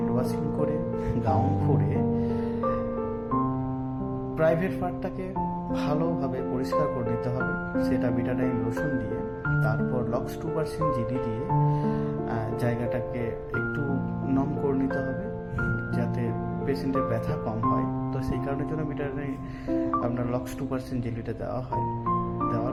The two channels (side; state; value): both; identical; correlation 1.00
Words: ওয়াশিং করে, গাউন পরে, প্রাইভেট পার্টটাকে ভালোভাবে পরিষ্কার করে নিতে হবে, সেটা বিটাডাইন লোশন দিয়ে। তারপর লক্স 2% জেলি দিয়ে জায়গাটাকে একটু নম করে নিতে হবে, যাতে পেশেন্টের ব্যথা কম হয়। তো সেই কারণের জন্য বিটাডাইন আপনার লক্স 2% জেলিটা দেওয়া হয়।